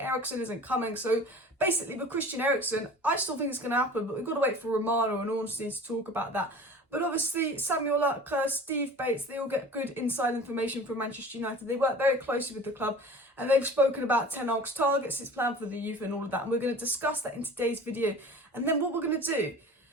Eriksen isn't coming. So basically, with Christian Eriksen, I still think it's going to happen, but we've got to wait for Romano and Antony to talk about that. But obviously, Samuel Lucker, Steve Bates, they all get good inside information from Manchester United. They work very closely with the club, and they've spoken about Ten Hag's targets, his plan for the youth and all of that. And we're going to discuss that in today's video. And then what we're going to do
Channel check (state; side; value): normal; both; correlation 0.41